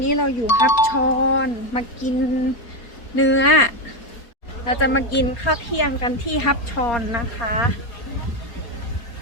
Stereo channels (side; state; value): right; late; 4.2 ms